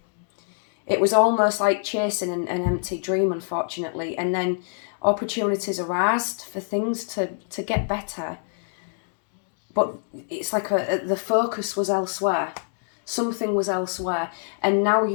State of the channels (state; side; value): silent; right; digital silence